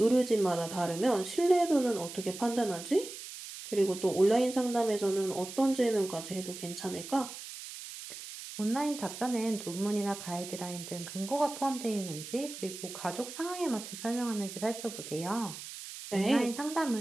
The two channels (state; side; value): noise; right; hiss, 11 dB below the sound